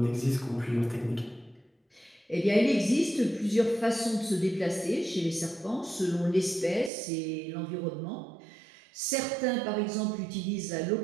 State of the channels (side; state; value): left; drops out; at 6.9 s